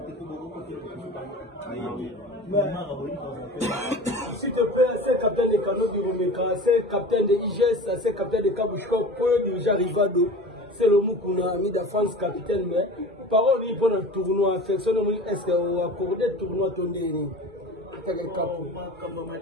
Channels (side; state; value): both; normal; correlation 0.36